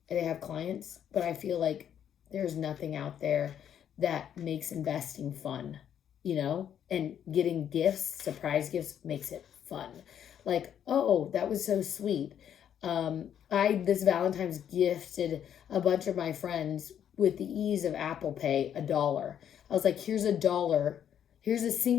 and they have clients? But I feel like there's nothing out there that makes investing fun, and getting gifts, surprise gifts, makes it fun. Like, oh, that was so sweet. I this Valentine's gifted a bunch of my friends with the ease of Apple Pay $1. I was like, here's $1. Here's a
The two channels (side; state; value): right; quieter; 9.4 dB